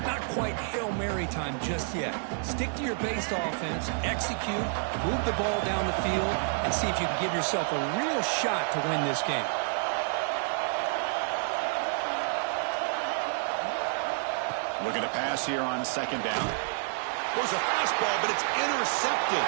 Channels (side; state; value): left; silent; 58 dB below the other